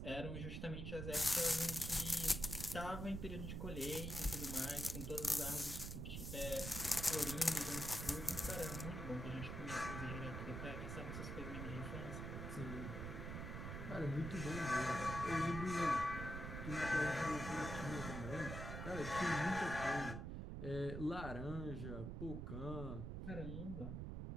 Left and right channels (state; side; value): noise; right; rumble, 5 dB below the sound